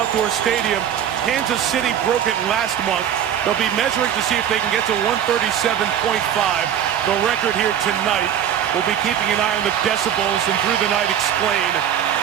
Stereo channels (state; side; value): quieter; left; 9.6 dB